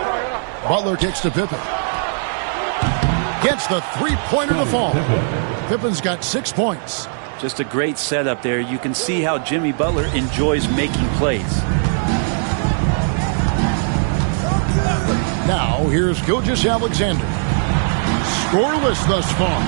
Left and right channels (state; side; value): silent; left; digital silence